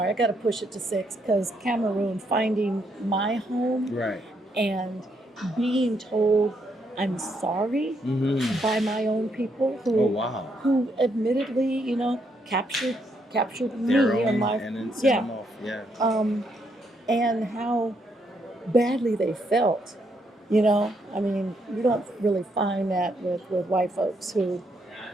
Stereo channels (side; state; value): both; normal; correlation 0.76